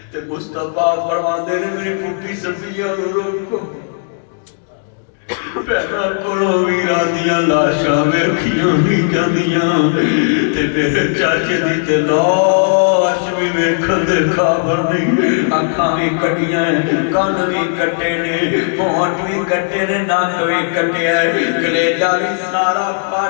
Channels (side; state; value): right; silent; digital silence